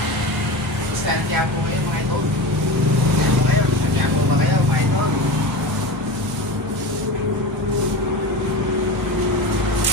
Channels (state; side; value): normal; both; correlation 0.27